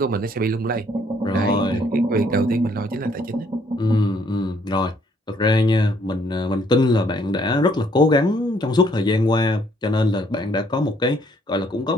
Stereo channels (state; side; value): normal; both; correlation 0.66